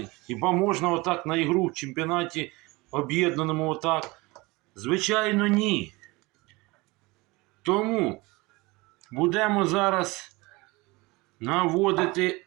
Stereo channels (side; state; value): left; quieter; 23.4 dB